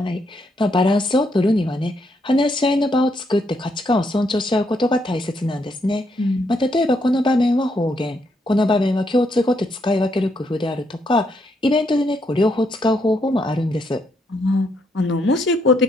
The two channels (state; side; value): normal; both; correlation 0.76